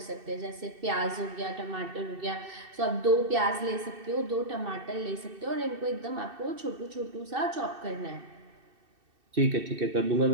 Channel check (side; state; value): left; late; 2.6 ms